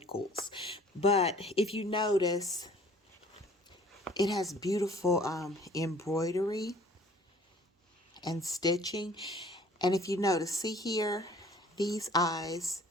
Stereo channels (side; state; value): both; normal; correlation 0.53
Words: but if you notice, it has beautiful embroidery and stitching. And if you notice, see here, these eyes